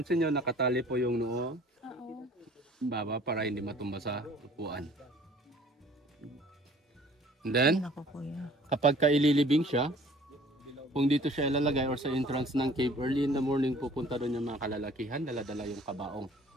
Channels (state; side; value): normal; both; correlation 0.52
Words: nyo, nakatali po yung noo Oo. baba para hindi matumba sa upuan. And then, Ay, naku kuya. kapag kaililibing siya, kung dito siya ilalagay or sa entrance ng cave, early in the morning pupunta doon yung mga kalalakihan, dala-dala yung kabaong.